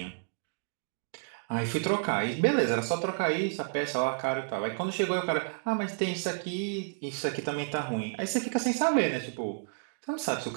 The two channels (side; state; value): left; silent; digital silence